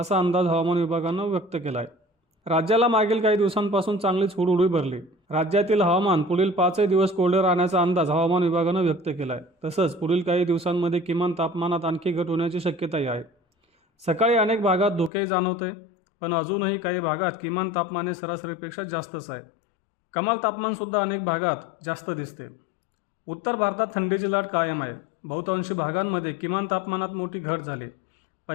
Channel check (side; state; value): right; drops out; at 15.1 s